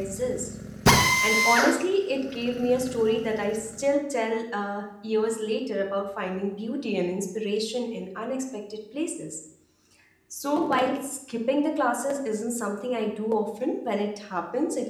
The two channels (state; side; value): identical; both; correlation 1.00